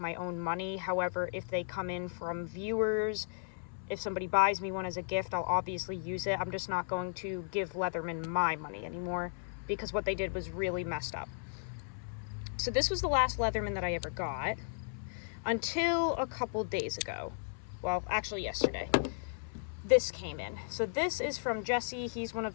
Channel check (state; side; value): silent; right; 54 dB below the other